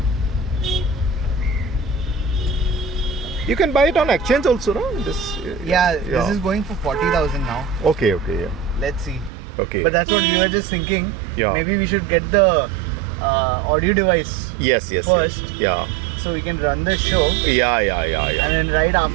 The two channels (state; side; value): drops out; left; at 9.3 s